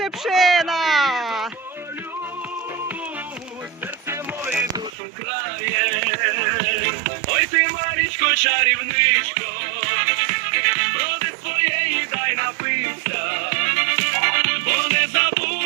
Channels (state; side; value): drops out; left; at 4.9 s